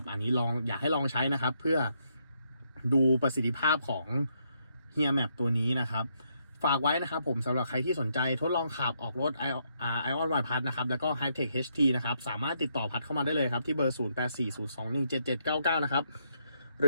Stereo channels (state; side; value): inverted; both; correlation -0.76